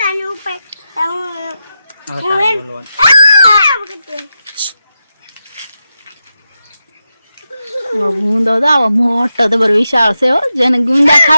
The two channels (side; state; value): both; inverted; correlation -0.89